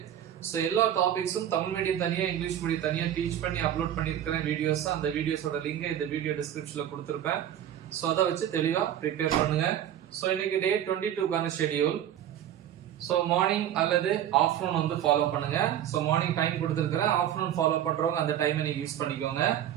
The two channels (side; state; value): left; quieter; 10.8 dB